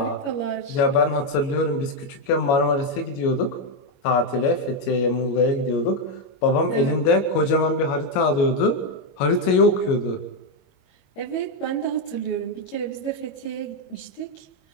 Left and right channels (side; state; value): right; late; 22 ms